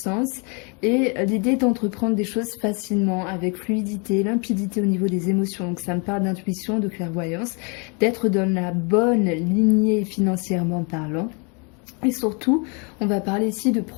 et l'idée d'entreprendre des choses facilement avec fluidité, limpidité au niveau des émotions. Donc ça me parle d'intuition, de clairvoyance, d'être dans la bonne lignée financièrement parlant. Et surtout, on va parler ici de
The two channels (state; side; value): quieter; right; 34.1 dB